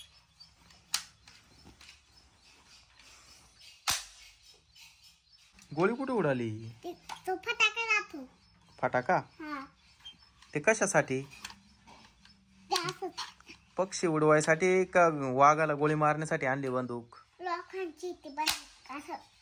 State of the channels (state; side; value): identical; both; correlation 1.00